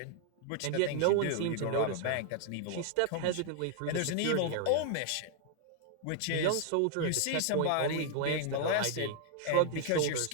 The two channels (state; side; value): different; both; correlation 0.00